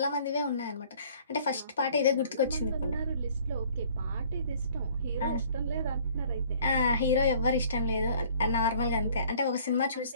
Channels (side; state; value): both; inverted; correlation -0.55